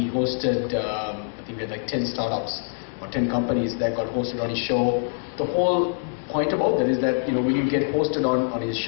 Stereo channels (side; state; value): right; silent; digital silence